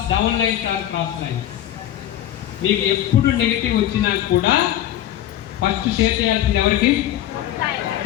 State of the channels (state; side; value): quieter; right; 12.4 dB